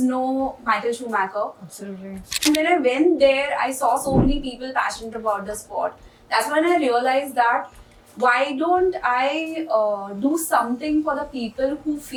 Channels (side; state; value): both; identical; correlation 1.00